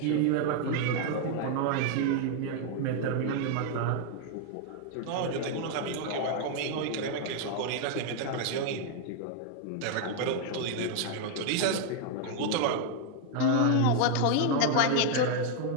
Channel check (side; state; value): both; different; correlation 0.00